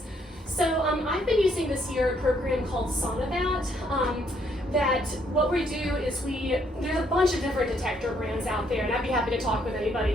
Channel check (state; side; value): normal; both; correlation 0.70